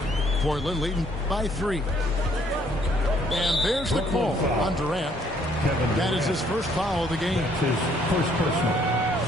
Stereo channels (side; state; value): both; normal; correlation 0.65